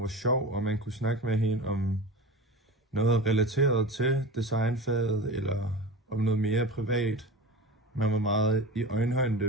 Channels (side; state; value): both; normal; correlation 0.31